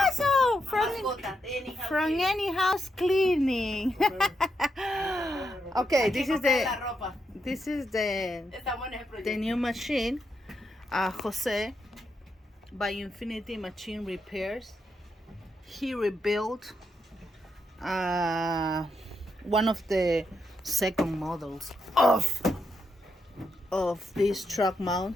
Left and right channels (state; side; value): normal; both; correlation 0.82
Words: from any house cleaning. Okay, this is the new machine. Jose by Infinity Machine Repairs. He rebuilt one of the second models of this truck